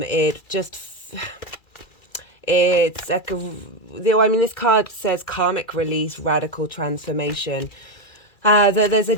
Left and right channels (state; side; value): late; right; 2.3 ms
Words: it's like this card says karmic release, radical transformation. There's a